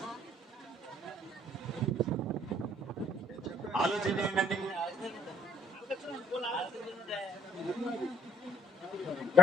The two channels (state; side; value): normal; both; correlation 0.66